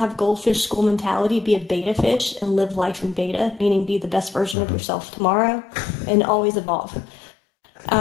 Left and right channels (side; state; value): right; drops out; at 4.5 s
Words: goldfish school mentality, be a beta fish and live life in beta, meaning be the best version of yourself tomorrow and always evolve.